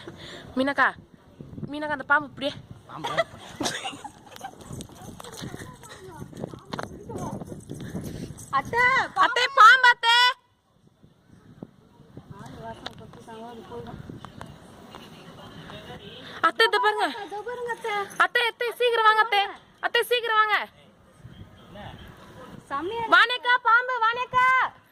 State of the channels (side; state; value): both; identical; correlation 1.00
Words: மீனாக்கா அந்த பாம்பு இப்படியே அத்தை பாம்பு அத்தை அத்தை இத பாருங்க அத்தை சீக்கிரம் வாங்க அத்தை சீக்கிரம் வாங்க. வானேக்கா பாம்பு வானேக்கா